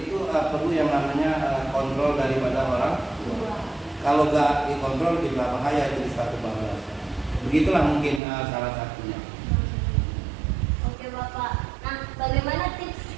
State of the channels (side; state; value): left; drops out; at 8.2 s